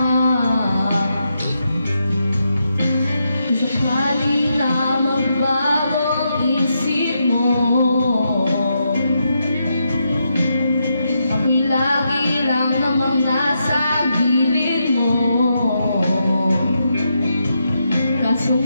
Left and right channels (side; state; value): both; inverted; correlation -0.82